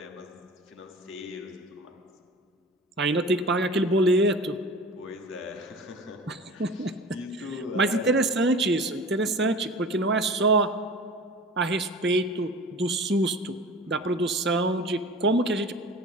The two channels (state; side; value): normal; both; correlation 0.37